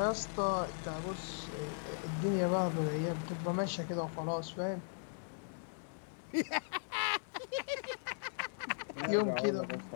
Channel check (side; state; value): right; silent; digital silence